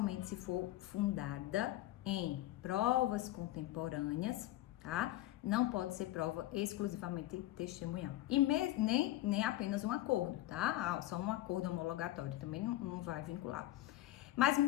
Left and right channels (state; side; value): quieter; right; 15.4 dB